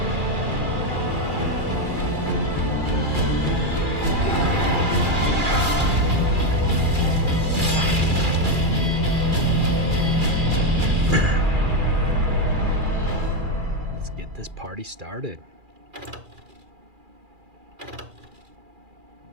Let's get this party started.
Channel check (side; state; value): left; late; 2.4 ms